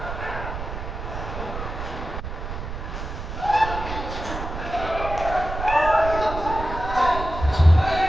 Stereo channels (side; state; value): right; noise; rumble, 7 dB below the sound